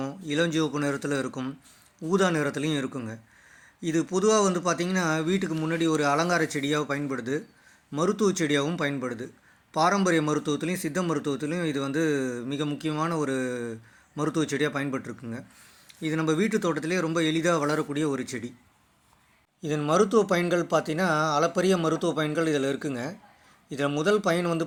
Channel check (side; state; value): both; identical; correlation 1.00